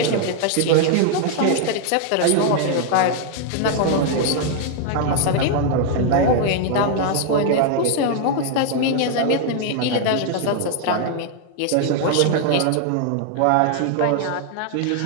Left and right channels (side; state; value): both; different; correlation 0.00